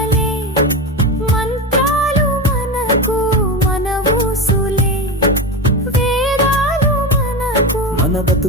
మంత్రాలు మనకు, మన ఊసులే వేదాలు మనకు, మన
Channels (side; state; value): both; normal; correlation 0.20